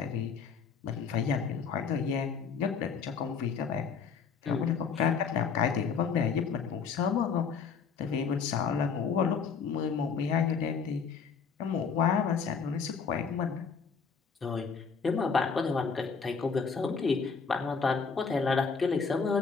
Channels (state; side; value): quieter; right; 5.8 dB